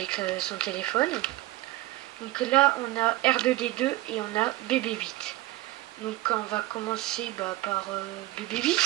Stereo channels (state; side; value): quieter; left; 17.7 dB